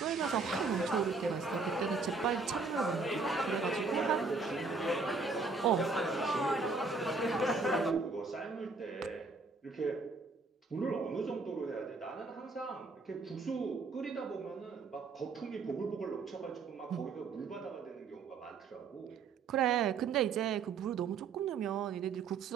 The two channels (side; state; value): left; quieter; 4.3 dB